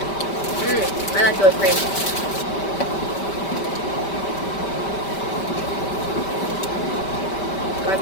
I like the whipped cream. Good.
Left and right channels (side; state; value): right; late; 5.1 ms